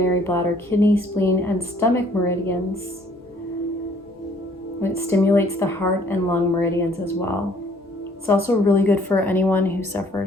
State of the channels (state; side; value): normal; both; correlation 0.60